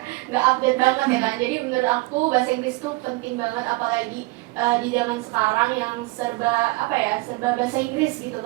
nggak update banget ya kan. Jadi menurut aku bahasa Inggris tuh penting banget, apalagi di zaman sekarang yang serba bahasa Inggris gitu.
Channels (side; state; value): left; quieter; 23.4 dB